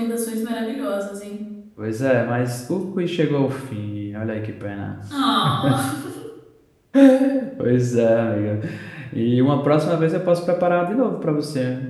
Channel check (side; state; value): both; identical; correlation 1.00